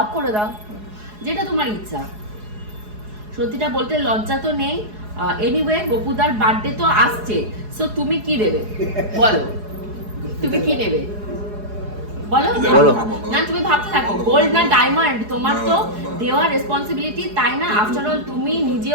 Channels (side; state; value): left; late; 4.8 ms